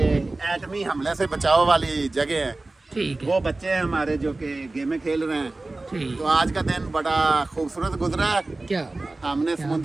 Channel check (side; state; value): left; quieter; 3.1 dB